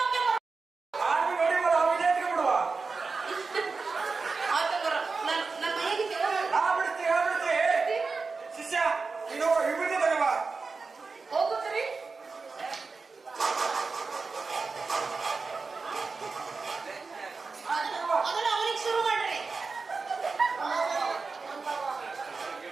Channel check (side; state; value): left; quieter; 4.4 dB